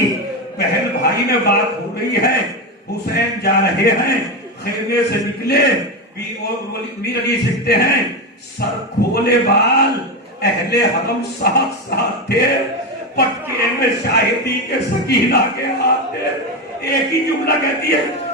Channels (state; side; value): normal; both; correlation 0.14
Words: بہن بھائی میں بات ہو رہی ہے، حسین جا رہے ہیں، خیمے سے نکلے، میر علی سکھتے ہیں سر کھولے بال، اہل حرم ساتھ ساتھ تھے، پٹکے میں شاہدی کے سکینہ کے ہاتھ تھے. ایک ہی جملہ کہتی ہے